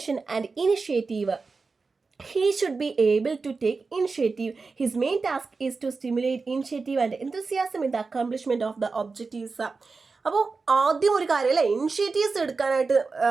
and initiative. He should be able to take initiative. His main task is to stimulate initiative and enthusiasm in the accomplishment of the objectives. അപ്പോൾ ആദ്യം ഒരു കാര്യം അല്ലേ, ഇനിഷ്യേറ്റീവ്സ് എടുക്കാനായിട്ട്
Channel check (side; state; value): left; quieter; 4.3 dB